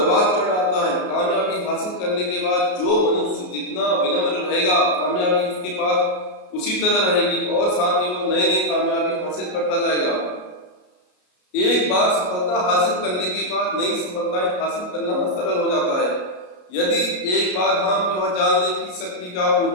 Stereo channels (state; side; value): late; right; 33 ms